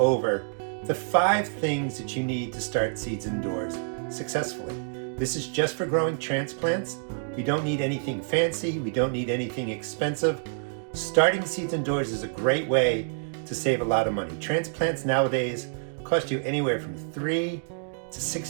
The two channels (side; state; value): left; silent; digital silence